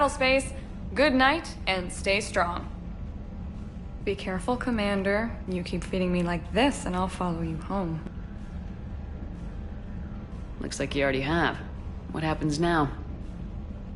Good night, and stay strong. Be careful, Commander. You keep feeding me like this, and I'll follow you home. Looks like you already have. What happens now?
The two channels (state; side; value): identical; both; correlation 1.00